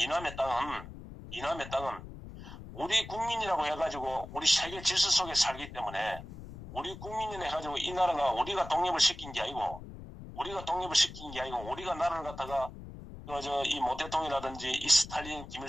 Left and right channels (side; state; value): left; noise; rumble, 13 dB below the sound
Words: 땅은 우리 국민이라고 해가지고 우리 세계 질서 속에 살기 때문에 우리 국민이라 해가지고 이 나라가 우리가 독립을 시킨 게 아니고 우리가 나라를 갖다가 이 모태통이라든지 이 스탈린